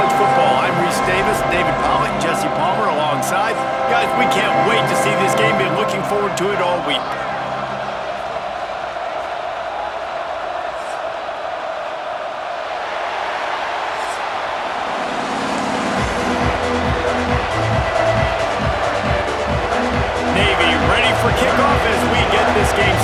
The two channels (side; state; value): both; identical; correlation 1.00